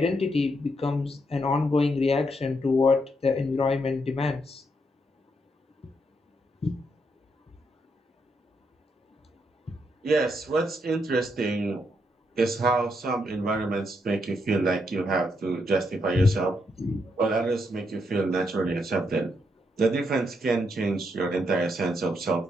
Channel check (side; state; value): both; normal; correlation 0.78